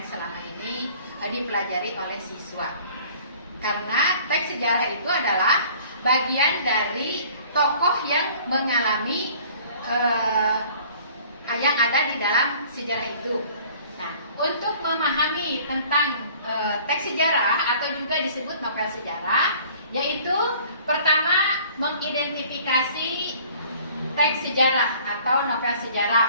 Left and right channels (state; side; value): inverted; both; correlation -0.51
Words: selama ini dipelajari oleh siswa. Karena teks sejarah itu adalah bagian dari tokoh yang mengalami yang ada di dalam sejarah itu. Nah, untuk memahami tentang teks sejarah atau juga disebut novel sejarah, yaitu pertama mengidentifikasi teks sejarah atau novel